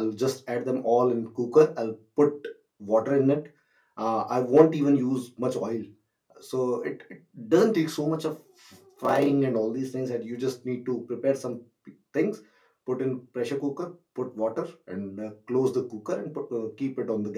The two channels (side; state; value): both; identical; correlation 1.00